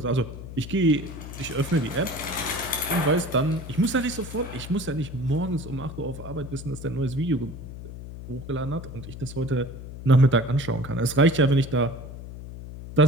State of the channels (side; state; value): left; noise; hum, 11 dB below the sound